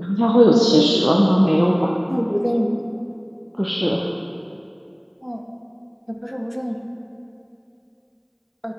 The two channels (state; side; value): identical; both; correlation 1.00